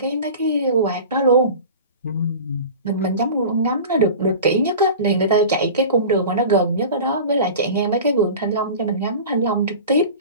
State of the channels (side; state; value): both; inverted; correlation -0.36